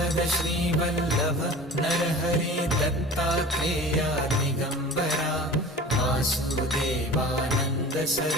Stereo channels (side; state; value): both; normal; correlation 0.40